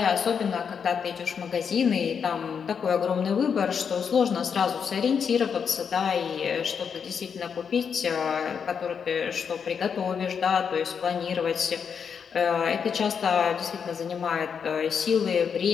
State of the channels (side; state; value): right; quieter; 6.8 dB